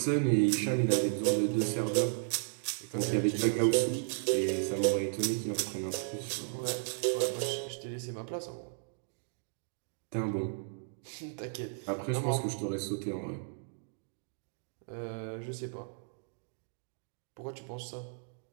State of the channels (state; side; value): silent; left; digital silence